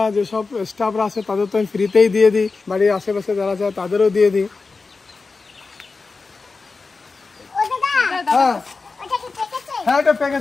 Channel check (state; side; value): quieter; right; 4.2 dB